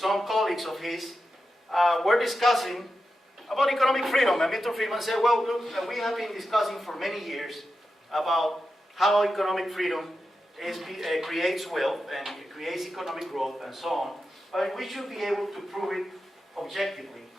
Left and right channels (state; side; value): normal; both; correlation 0.90